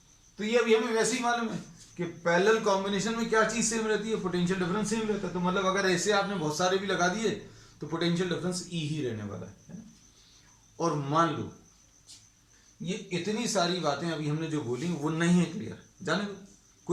तो ये अभी हमें वैसे ही मालूम है कि पैरेलल कॉम्बिनेशन में क्या चीज सेम रहती है, पोटेंशियल डिफरेंस सेम रहता है। तो मतलब अगर ऐसे आपने बहुत सारे भी लगा दिए तो पोटेंशियल डिफरेंस E ही रहने वाला है ना। और मान लो ये इतनी सारी बातें अभी हमने जो बोली वो नहीं है क्लियर, जाने दो,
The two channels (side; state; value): both; identical; correlation 1.00